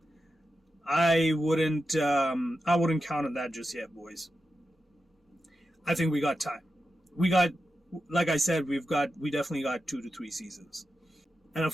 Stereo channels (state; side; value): normal; both; correlation 0.90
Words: I wouldn't count on that just yet, boys. I think we got time. Like I said, we definitely got 2 to 3 seasons. And